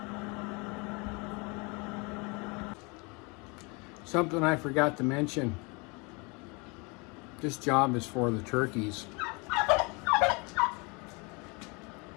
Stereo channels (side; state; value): right; quieter; 29.4 dB